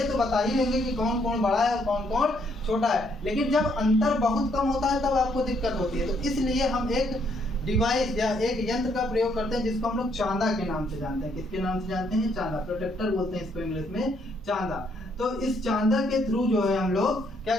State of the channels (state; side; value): normal; both; correlation 0.70